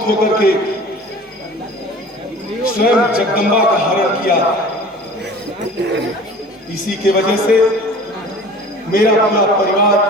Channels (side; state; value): both; normal; correlation 0.43